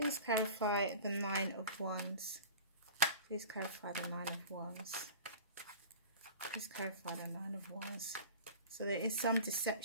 clarify the 9 of Wands. Please clarify the 9 of Wands. Please clarify the 9 of Wands. So there is some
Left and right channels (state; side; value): inverted; both; correlation -0.38